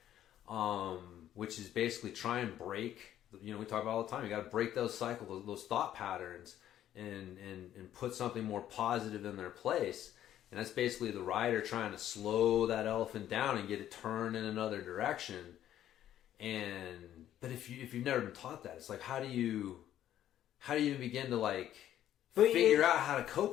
Which is basically try and break, we talk about all the time, you got to break those cycles, those thought patterns, and put something more positive in their place. And that's basically the rider trying to slow that elephant down and get it turned in another direction. But if you've never been taught that, it's like, how do you begin to, like, figure out how to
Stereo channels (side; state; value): right; quieter; 11.7 dB